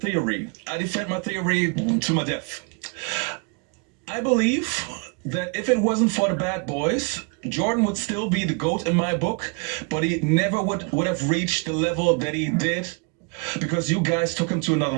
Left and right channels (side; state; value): left; quieter; 31.9 dB